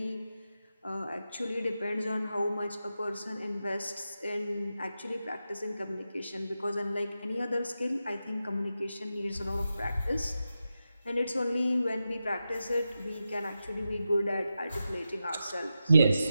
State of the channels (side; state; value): both; inverted; correlation -0.90